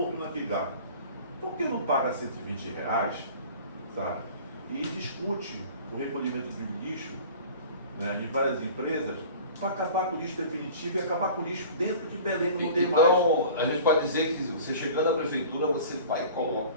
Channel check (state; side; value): inverted; both; correlation -0.42